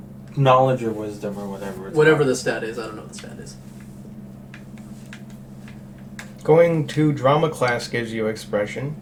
knowledge or wisdom or whatever. It's Whatever called. the stat is, I don't know what the stat is. Going to drama class gives you expression.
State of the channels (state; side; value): identical; both; correlation 1.00